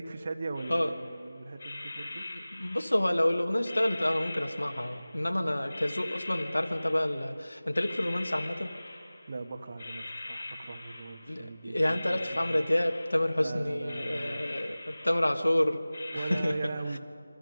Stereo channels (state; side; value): inverted; both; correlation -0.98